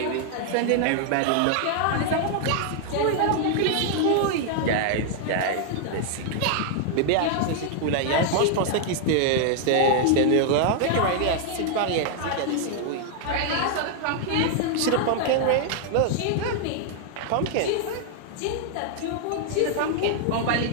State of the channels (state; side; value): different; both; correlation 0.00